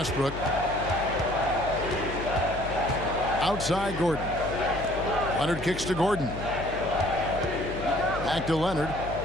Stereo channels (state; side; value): noise; left; hum, 10 dB below the sound